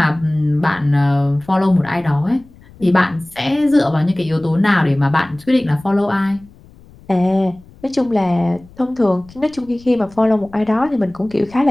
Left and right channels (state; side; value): noise; left; rumble, 24 dB below the sound